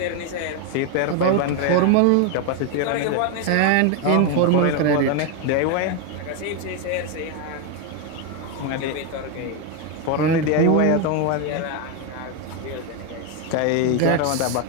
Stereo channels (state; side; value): different; both; correlation 0.01